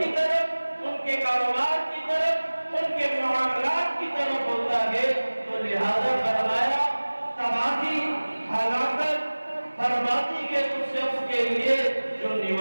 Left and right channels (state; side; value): inverted; both; correlation -1.00